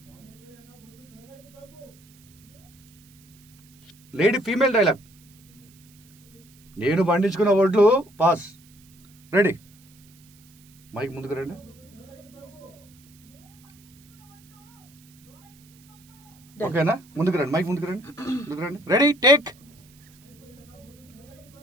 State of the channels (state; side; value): noise; right; hiss, 27 dB below the sound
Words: Lady female dialogue. నేను పండించుకున్న వడ్లు పాస్. రెడీ? మైక్ ముందుకు రండి. ఓకేనా? ముందుకు రండి, మైక్ ముందుకు రండి. ముందుకు రండి. రెడీ? టేక్.